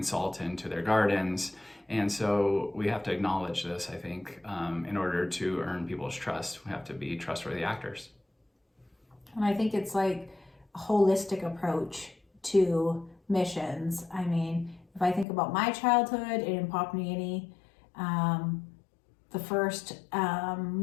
salt into their gardens. And so we have to acknowledge this, I think, in order to earn people's trust. We have to be trustworthy actors. And I think it's like a holistic approach to missions. I mean, if I think about my childhood in Papua New Guinea, the first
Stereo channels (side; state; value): right; drops out; at 15.2 s